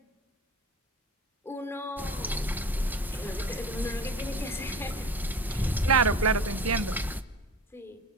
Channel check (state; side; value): normal; both; correlation 0.38